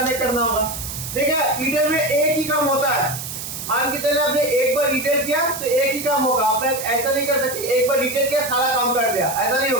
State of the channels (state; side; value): noise; right; hiss, 8 dB below the sound